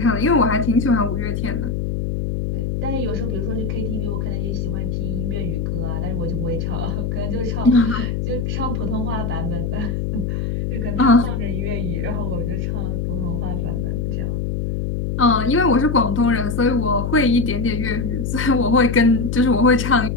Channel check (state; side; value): noise; left; hum, 1 dB below the sound